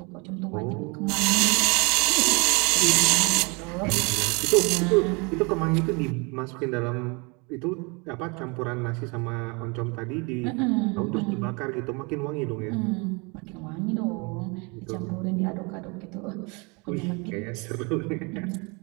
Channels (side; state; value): left; quieter; 30.0 dB